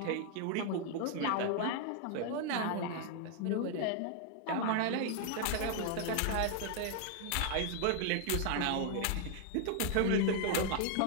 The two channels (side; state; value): both; different; correlation 0.00